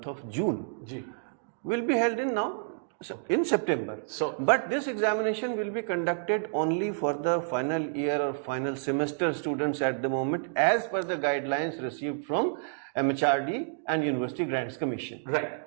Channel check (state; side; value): silent; left; digital silence